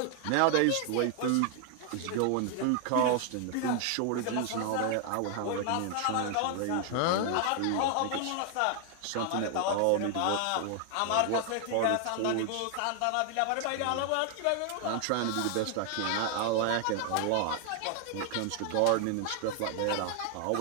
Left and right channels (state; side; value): different; both; correlation 0.00